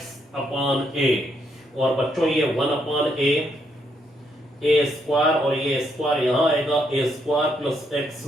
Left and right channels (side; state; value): both; normal; correlation 0.75